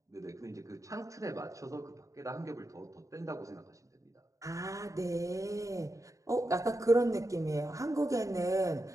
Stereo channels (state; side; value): late; left; 0.16 ms